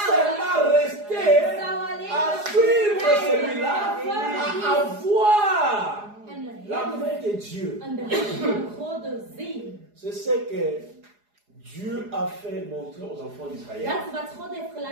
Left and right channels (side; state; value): left; late; 4.8 ms